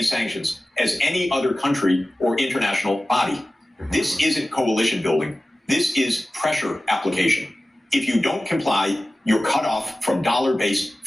sanctions as any other country or international body. This isn't coalition building. This is pressure application. If you don't comply, you're cut off from dollar-based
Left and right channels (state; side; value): normal; both; correlation 0.96